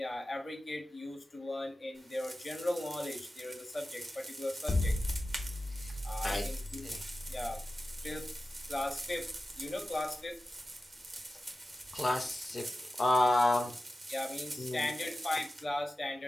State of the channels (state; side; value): normal; both; correlation 0.94